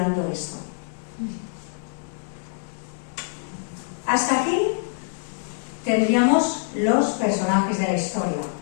esto. Hasta aquí tendríamos los personajes de la historia.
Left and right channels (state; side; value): silent; right; digital silence